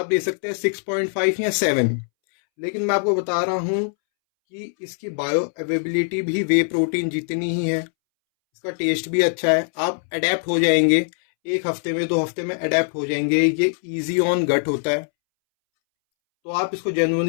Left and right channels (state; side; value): silent; right; 64 dB below the other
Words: दे सकते हैं 6.5 या 7। लेकिन मैं आपको बता रहा हूं कि इसकी बायो अवेबिलिटी भी वे प्रोटीन जितनी ही है, इसका टेस्ट भी अच्छा है। आप अडेप्ट हो जाएंगे, 1 हफ्ते में 2 हफ्ते में अडेप्ट हो जाएंगे। ये इजी ऑन गट होता है, तो आप इसको